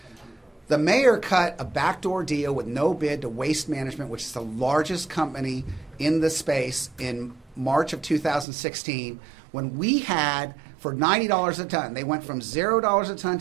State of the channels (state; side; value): drops out; left; at 8.5 s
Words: the mayor cut a backdoor deal with no bid to Waste Management, which is the largest company in the space, in March of 2016, when we had, for $90 a ton, they went from $0 a ton